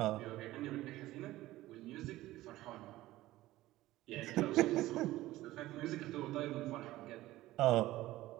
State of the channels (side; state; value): left; quieter; 16.5 dB